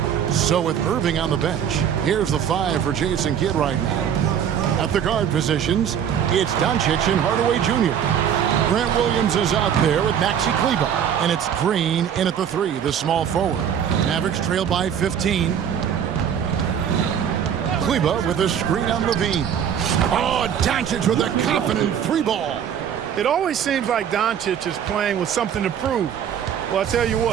So with Irving on the bench, here's the 5 for Jason Kidd right now. At the guard positions, it's Doncic and Hardaway Jr. Grant Williams is out there with Maxi Kleber. And it's Green in at the 3, the small forward. Mavericks trail by 15. Kleber with a screen on Levine. Oh, Doncic with a confident 3 ball. It always seems like Doncic is playing with something to prove. Well, I tell you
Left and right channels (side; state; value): left; quieter; 8.7 dB